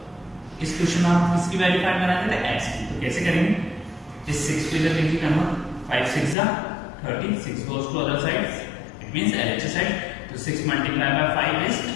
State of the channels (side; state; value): right; drops out; at 6.4 s